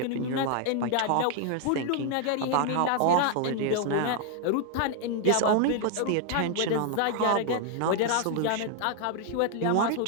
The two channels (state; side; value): different; both; correlation 0.00